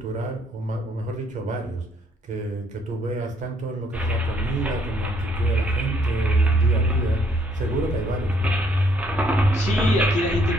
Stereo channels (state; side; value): normal; both; correlation 0.67